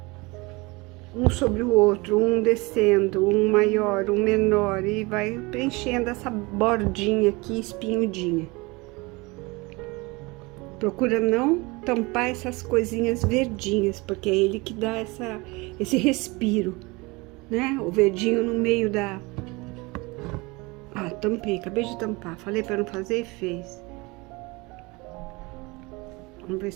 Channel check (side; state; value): left; quieter; 24.9 dB